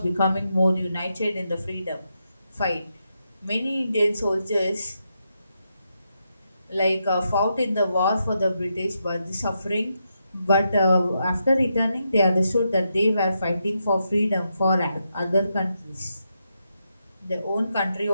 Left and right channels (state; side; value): inverted; both; correlation -0.83